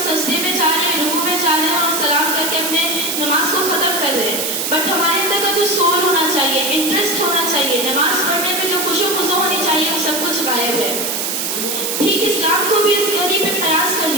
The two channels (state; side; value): noise; right; hiss, 1 dB below the sound